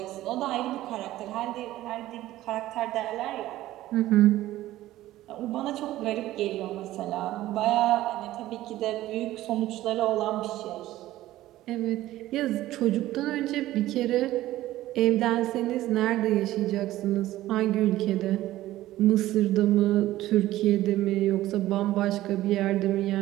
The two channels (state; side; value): quieter; left; 15.3 dB